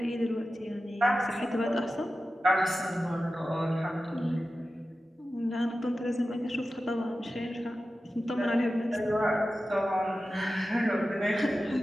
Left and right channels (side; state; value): both; normal; correlation 0.94